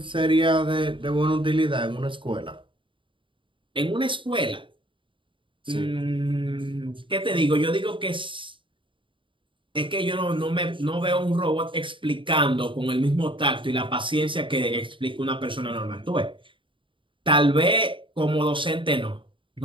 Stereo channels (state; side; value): late; left; 0.24 ms